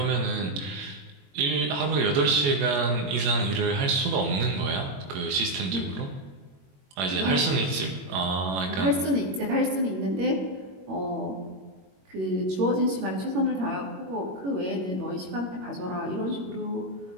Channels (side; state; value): left; late; 21 ms